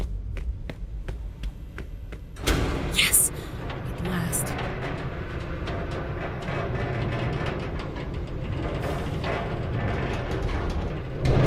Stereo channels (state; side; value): identical; both; correlation 1.00